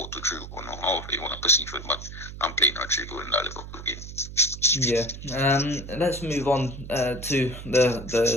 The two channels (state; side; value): noise; right; hum, 11 dB below the sound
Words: or however you want to perceive it, but I'm playing Rodrigo in that Liverpool game. Yeah. Let's move on to